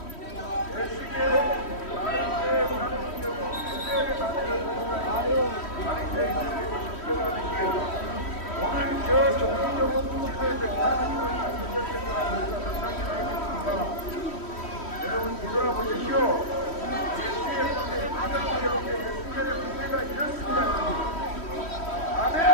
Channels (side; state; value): right; late; 3.1 ms